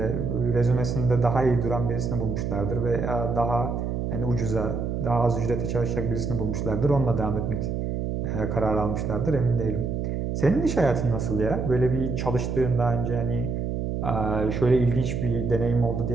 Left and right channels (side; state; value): right; noise; hum, 2 dB below the sound